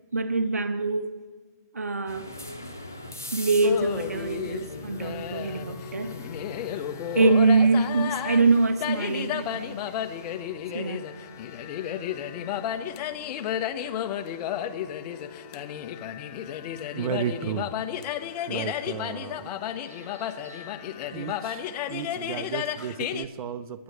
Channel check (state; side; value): inverted; both; correlation -0.58